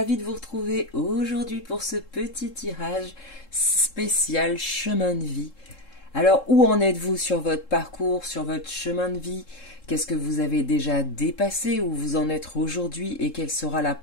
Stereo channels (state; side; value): late; right; 3.7 ms